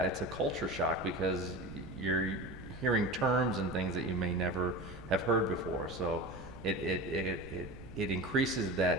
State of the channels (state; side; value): noise; right; rumble, 16 dB below the sound